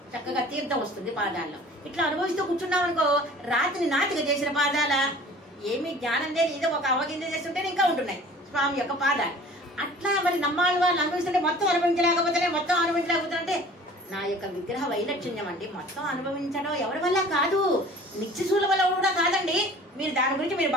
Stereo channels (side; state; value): both; normal; correlation 0.47